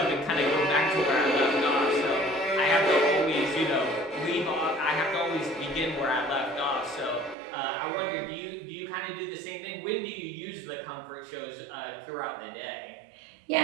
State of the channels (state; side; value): drops out; left; at 7.4 s